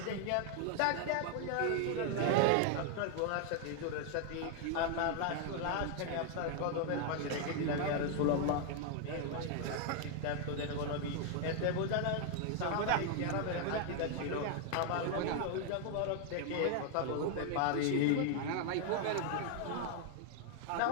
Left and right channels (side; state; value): both; different; correlation 0.00